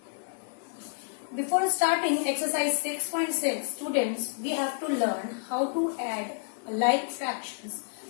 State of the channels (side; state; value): right; silent; 58 dB below the other